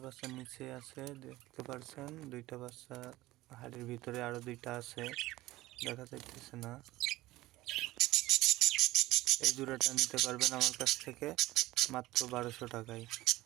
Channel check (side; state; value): left; quieter; 17.8 dB